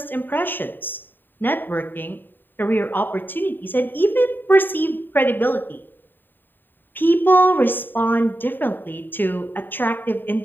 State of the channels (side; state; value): right; late; 0.093 ms